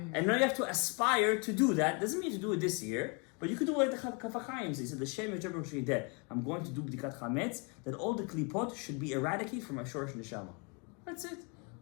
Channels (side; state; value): right; quieter; 33.9 dB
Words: and now you have to aspire to do that. Doesn't mean to do it this year, but you could do it like the Kaf HaChaim says. He said, the Shem Yechebro Shideh. I'm going to do B'dikat Chametz, that all the klipot should be eradicated from my Shorosh Neshama. That's it.